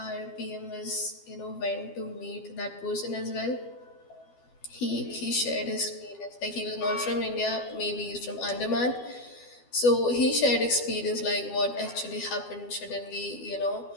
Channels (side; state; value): right; late; 12 ms